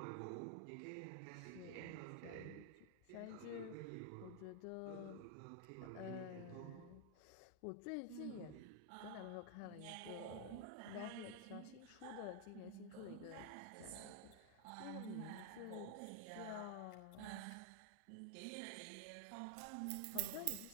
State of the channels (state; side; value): different; both; correlation 0.00